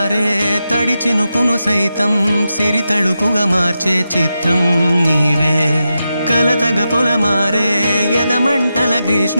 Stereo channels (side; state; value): both; inverted; correlation -0.89